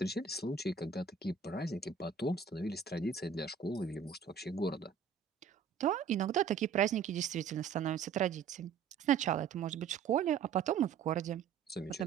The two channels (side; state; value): left; quieter; 6.5 dB